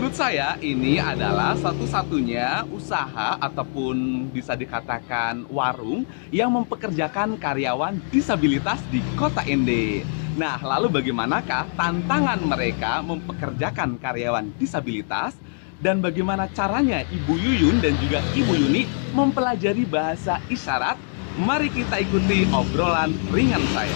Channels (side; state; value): right; silent; digital silence